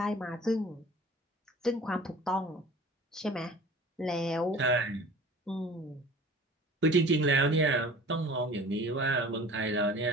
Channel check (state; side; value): normal; both; correlation 0.44